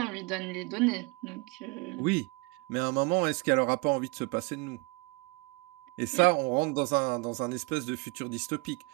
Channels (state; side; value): quieter; left; 27.6 dB